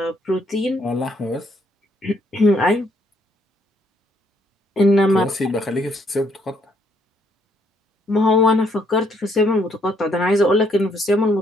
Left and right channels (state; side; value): normal; both; correlation 0.70